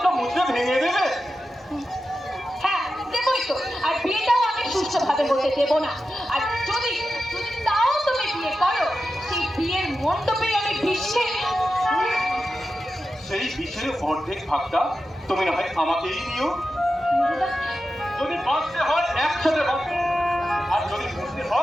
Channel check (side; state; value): both; normal; correlation 0.91